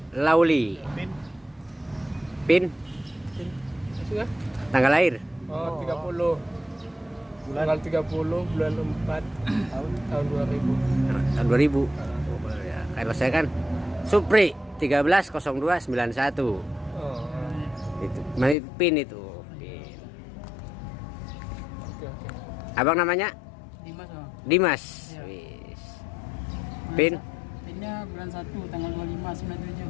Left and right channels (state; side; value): drops out; right; at 18.6 s